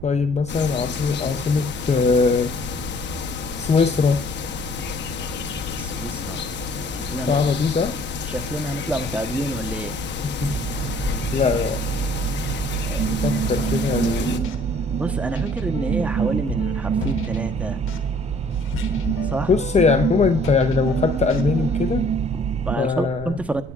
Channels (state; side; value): noise; right; rumble, 13 dB below the sound